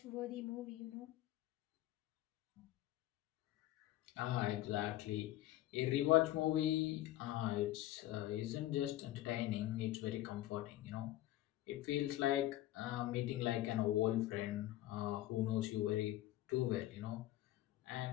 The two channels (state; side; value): quieter; right; 15.1 dB